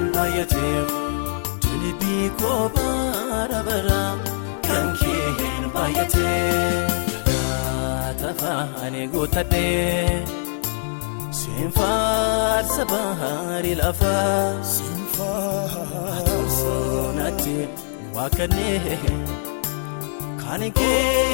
bayate Tilibi kobara bara kankehen bayate Tafa ani gutadhe sinfaarsa bahari lafa sinfaarsoonatti waaqanee kana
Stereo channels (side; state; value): right; silent; digital silence